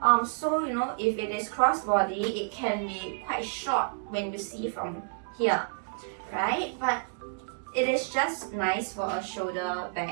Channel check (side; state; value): left; silent; 58 dB below the other